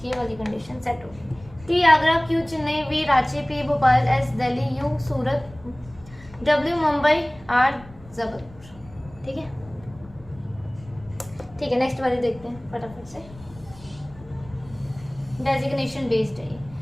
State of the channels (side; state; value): left; noise; rumble, 21 dB below the sound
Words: ये वाली कंडीशन सेट होगी। T Agra, Q Chennai, V Ranchi, P Bhopal, S Delhi, U Surat, W Mumbai, R Jabalpur. ठीक है नेक्स्ट वाली देखते हैं फटाफट से। डेजिग्नेशन बेस्ड है।